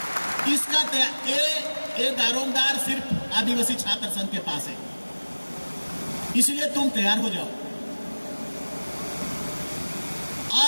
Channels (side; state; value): both; inverted; correlation -1.00